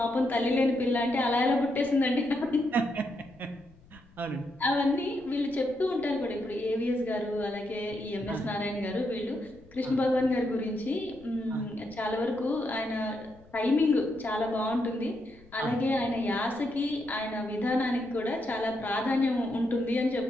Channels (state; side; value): noise; left; rumble, 25 dB below the sound